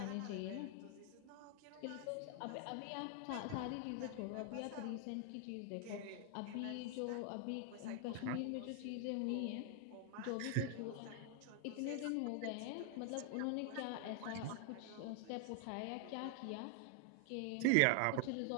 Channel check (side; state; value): both; different; correlation 0.00